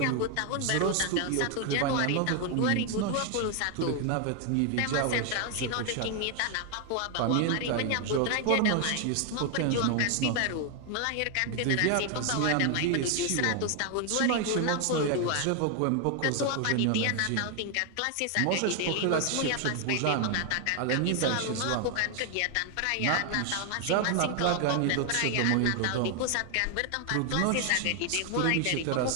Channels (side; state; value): both; different; correlation 0.00